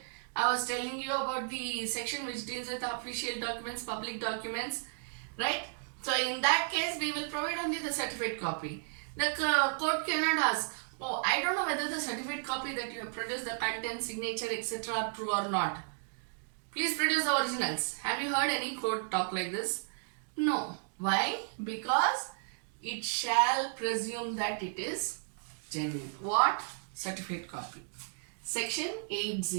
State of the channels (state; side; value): silent; left; digital silence